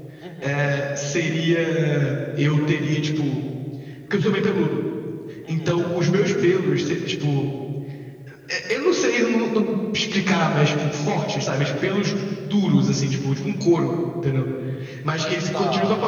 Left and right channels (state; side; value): identical; both; correlation 1.00